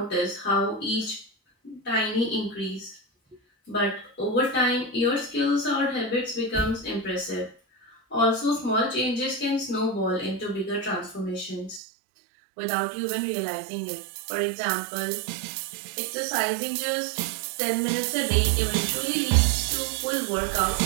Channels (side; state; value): left; drops out; at 11.8 s